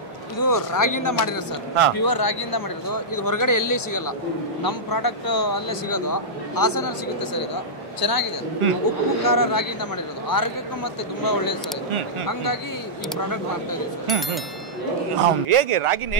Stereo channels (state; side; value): normal; both; correlation -0.12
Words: ಇದು ರಾಗಿಯಿಂದ ಮಾಡಿರೋದು ಸರ್, ಪ್ಯೂರ್ ರಾಗಿಯಿಂದ ಮಾಡಿರೋದು. ಇದು ಹೊರಗಡೆ ಎಲ್ಲಿ ಸಿಗಲ್ಲ, ನಮ್ಮ ಪ್ರಾಡಕ್ಟ್ ಅಲ್ಲೇ ಸಿಗೋದು, ಹಾಸನಲ್ಲಿ ಸಿಗುತ್ತೆ ಸರ್. ಇದು ಚೆನ್ನಾಗಿದೆ, ಉಪ್ಪು ಖಾರ ರಾಗಿಯಿಂದ ಮಾಡಿರೋದು, ಆರೋಗ್ಯಕ್ಕೂ ಮತ್ತೆ ತುಂಬಾ ಒಳ್ಳೇದು ಸರ್ ಇದು. ಹಂಗಾಗಿ ಈ ಪ್ರಾಡಕ್ಟ್ ಮಾಡ್ತಾ ಇದೀವಿ ಸರ್. ಹೇಗೆ ರಾಗಿನ